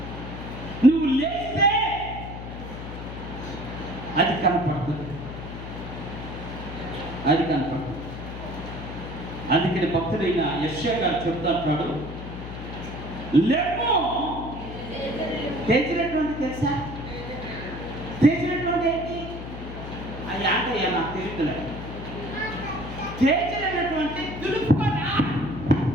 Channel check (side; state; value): left; noise; hum, 9 dB below the sound